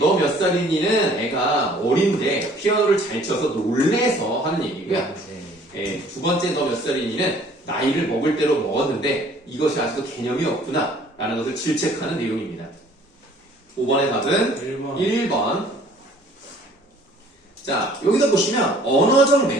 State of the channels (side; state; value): both; normal; correlation 0.55